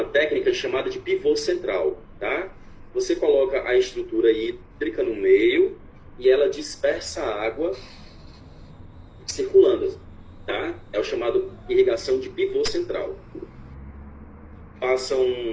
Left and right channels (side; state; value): both; identical; correlation 1.00